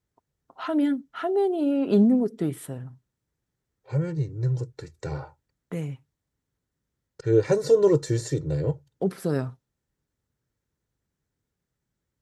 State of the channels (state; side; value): identical; both; correlation 1.00